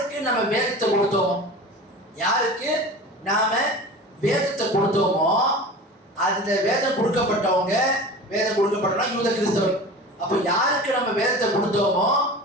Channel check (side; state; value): both; normal; correlation 0.35